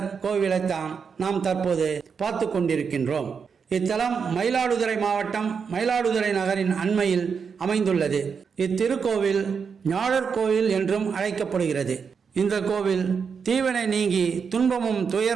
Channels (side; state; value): left; quieter; 6.1 dB